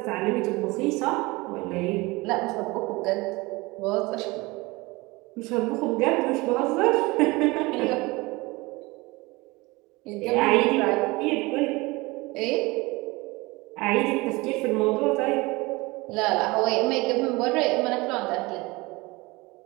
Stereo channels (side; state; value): left; quieter; 23.2 dB